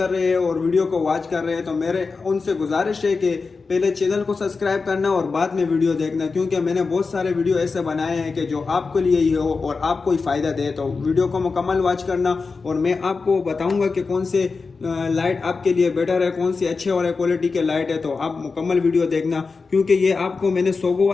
रहे हैं और वीडियो को वॉच कर रहे हैं। तो मेरे उनसे गुजारिश है कि पहले चैनल को सब्सक्राइब करना और बाद में वीडियो देखना, क्योंकि मैंने बहुत सारे वीडियो ऐसे बनाए हैं कि जो आपके लिए ही हो और आपको ही फ़ायदा दे। तो वीडियो को मुकम्मल वॉच करना और मैं आपको बताऊंगा कि कौन से लाइट आपके लिए बेटर है, कौन सी अच्छे वाले क्वालिटी के लाइट है। तो आप मुकम्मल वीडियो देखना क्योंकि ये आपको मैंने सोगो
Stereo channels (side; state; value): right; quieter; 4.5 dB